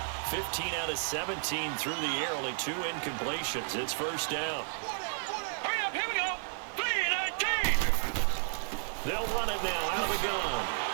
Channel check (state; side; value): silent; left; digital silence